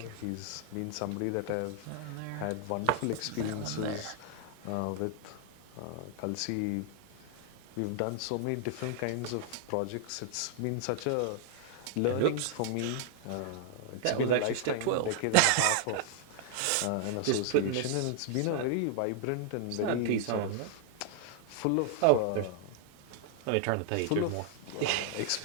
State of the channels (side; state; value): both; different; correlation -0.01